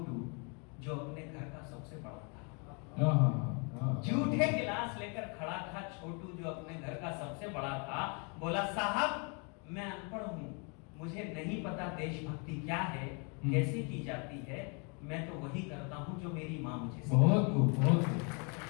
जो अपने घर का सबसे बड़ा था। जूठे गिलास लेकर खड़ा था छोटू, जो अपने घर का सबसे बड़ा था। बोला, साहब मैं अनपढ़ हूँ, मुझे नहीं पता देशभक्ति क्या है, कैसे की जाती है, मैं तो वही करता हूँ जो मेरी माँ मुझे सिखाती है। बहुत खूब, बहुत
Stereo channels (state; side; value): quieter; right; 35.4 dB